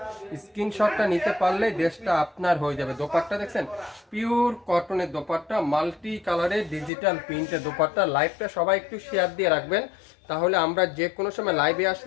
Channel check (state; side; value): drops out; right; at 6.9 s